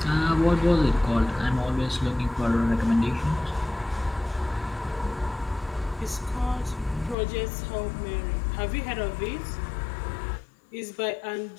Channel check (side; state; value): right; drops out; at 7.2 s